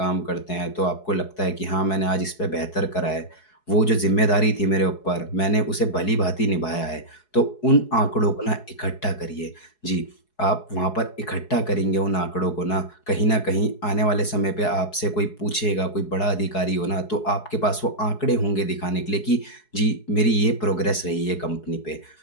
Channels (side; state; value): right; late; 4.7 ms